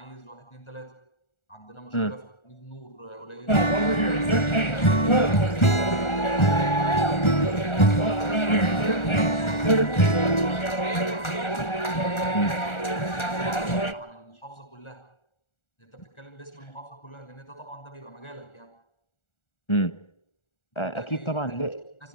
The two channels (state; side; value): late; right; 1.4 ms